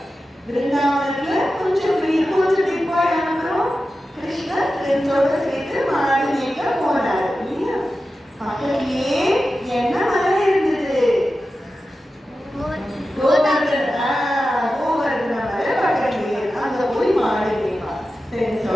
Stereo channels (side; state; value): both; normal; correlation 0.93